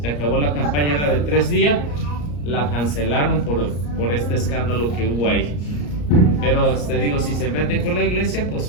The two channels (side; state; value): right; late; 34 ms